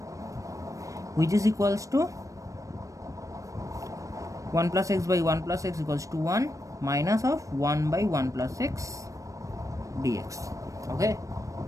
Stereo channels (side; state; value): left; late; 0.16 ms